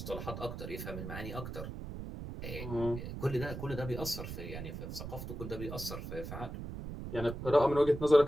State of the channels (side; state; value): right; noise; rumble, 7 dB below the sound